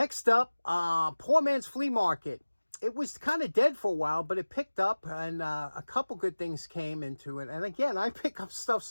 up, Poor Man's Flea Market. It was kind of dead for a while, but it picked up, and a couple good things came into it. And again, I pick up stuff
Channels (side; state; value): both; inverted; correlation -1.00